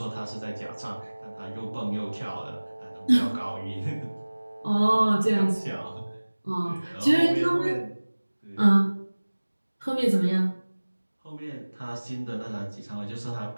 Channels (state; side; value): inverted; both; correlation -1.00